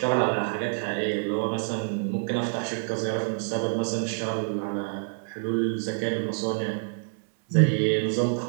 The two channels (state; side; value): silent; left; digital silence